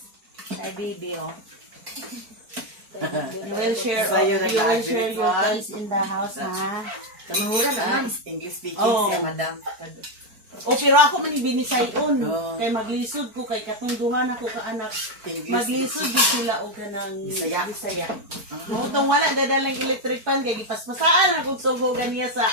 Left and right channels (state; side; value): late; left; 4.5 ms